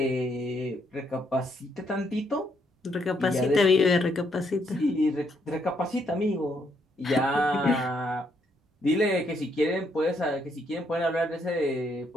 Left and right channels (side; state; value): both; normal; correlation 0.74